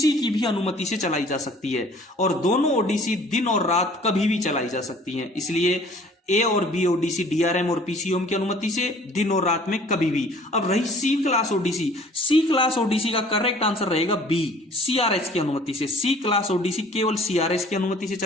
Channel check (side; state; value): both; normal; correlation 0.52